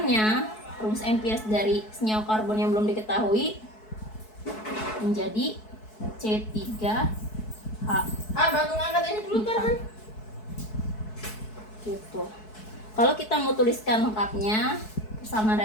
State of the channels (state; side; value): late; right; 4.6 ms